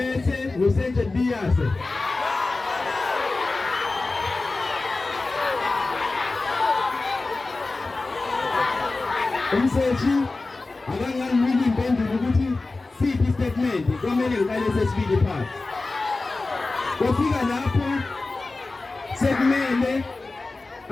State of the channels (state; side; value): quieter; right; 3.4 dB